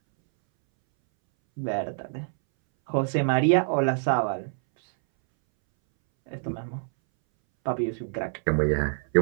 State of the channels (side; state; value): left; silent; 61 dB below the other